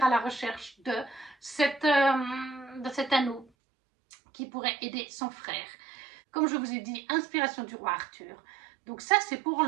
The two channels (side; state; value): left; drops out; at 3.5 s